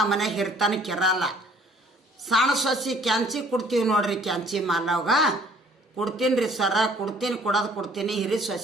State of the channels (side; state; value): both; normal; correlation 0.57